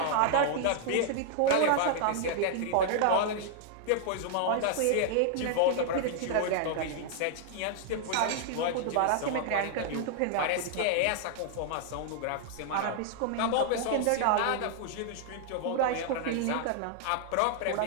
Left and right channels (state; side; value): different; both; correlation 0.00